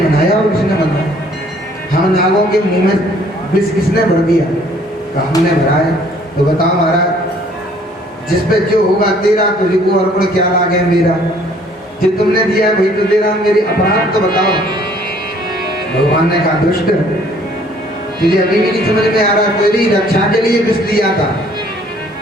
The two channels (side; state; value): both; normal; correlation 0.59